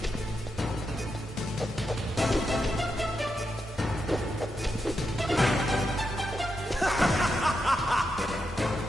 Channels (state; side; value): normal; both; correlation 0.85